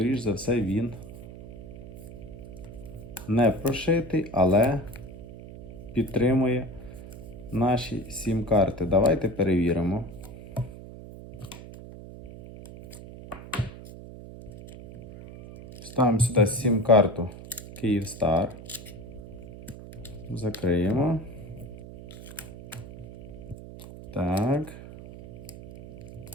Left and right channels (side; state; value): right; noise; hum, 14 dB below the sound